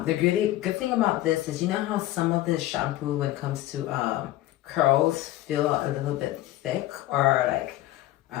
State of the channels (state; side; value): quieter; right; 15.4 dB